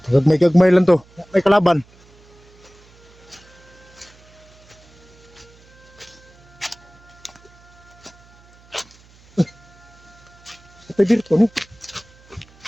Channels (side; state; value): right; noise; hum, 27 dB below the sound